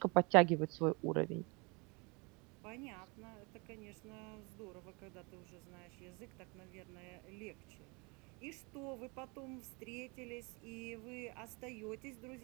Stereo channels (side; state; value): left; quieter; 29.6 dB